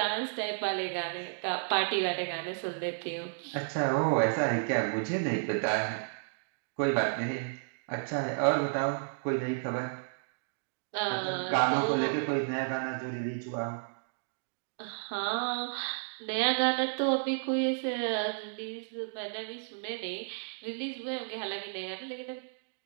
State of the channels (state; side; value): silent; left; digital silence